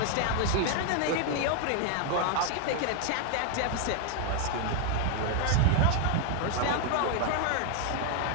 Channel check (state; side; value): different; both; correlation 0.00